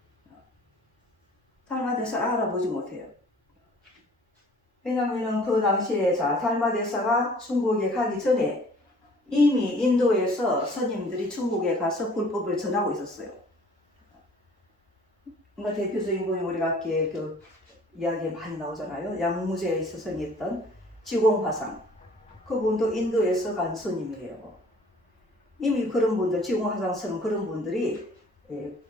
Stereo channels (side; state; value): both; normal; correlation 0.53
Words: 달마대사를 알아보지 못해요. 왜냐하면 그 당시에 달마대사가 중국에 가기 전에 이미 인도에서 스님들이 중국에 가서 불법을 전하고 있었어요. 그러니까 대표적인 분이 우리가 아까 그 이야기에 많이 나오잖아요. 양무제에 스승이었던 지공화상. 그분도 인도에서 간 스님이에요. 이미 그런 분들, 지공화상 스님 그런 분들이